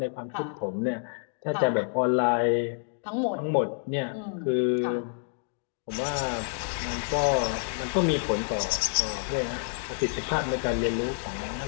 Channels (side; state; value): right; silent; digital silence